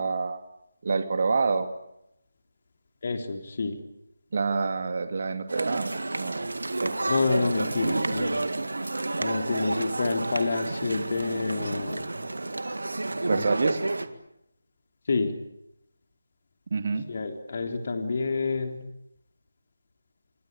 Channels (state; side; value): inverted; both; correlation -0.90